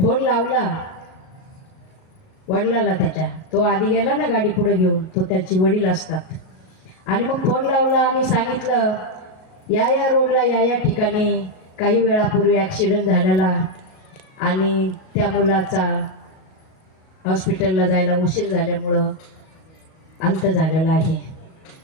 लावला वडिलाला त्याच्या, तो आधी गेला ना गाडी पुढे घेऊन, तो त्याची वडील असतात. आणि मग फोन लावला आणि सांगितलं, या रोडला या ठिकाणी काही वेळापूर्वी ॲक्सिडेंट झालेला आणि त्या मुलाचा हॉस्पिटलला जायला उशीर झाल्यामुळं अंत झालेला आहे.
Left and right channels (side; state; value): right; late; 37 ms